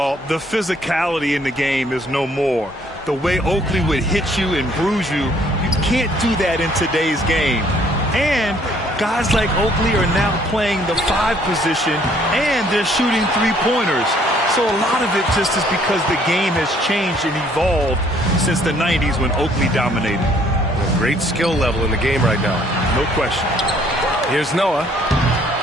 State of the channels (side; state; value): both; normal; correlation 0.62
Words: the physicality in the game is no more. The way Oakley would hit you and bruise you, you can't do that in today's game. And guys like Oakley are now playing the 5 position, and they're shooting 3-pointers. So a lot of it just is because the game has changed and evolved since the 90s when Oakley dominated. A great skill level in the game right now. No question. Here's Noah.